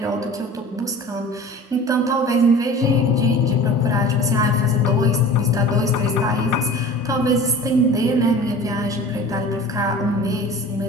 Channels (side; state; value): both; normal; correlation 0.40